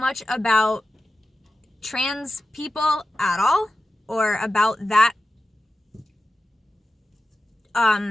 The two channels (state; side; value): normal; both; correlation 0.93